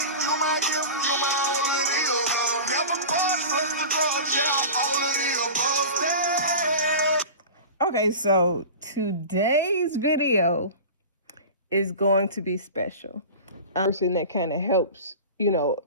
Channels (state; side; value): inverted; both; correlation -0.33